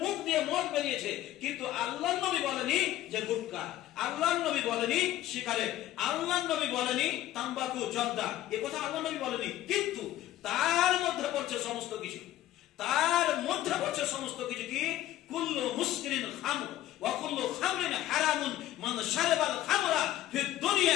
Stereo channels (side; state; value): right; quieter; 14.0 dB